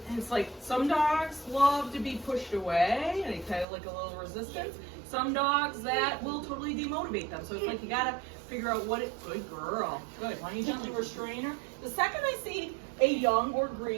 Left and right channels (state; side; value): drops out; left; at 3.7 s